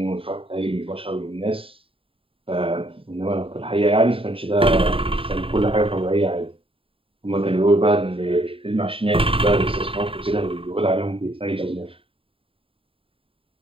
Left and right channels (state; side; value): late; left; 0.27 ms